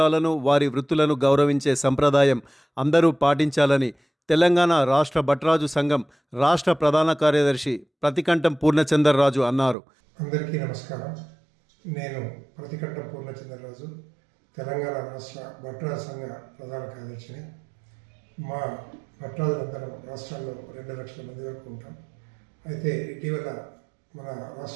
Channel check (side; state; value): left; drops out; at 9.8 s